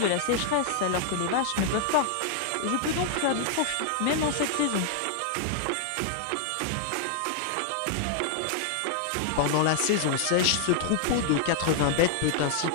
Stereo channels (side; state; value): both; different; correlation 0.00